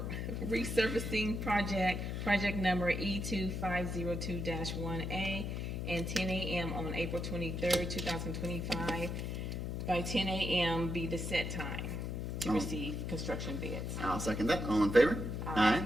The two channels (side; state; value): left; noise; hum, 3 dB below the sound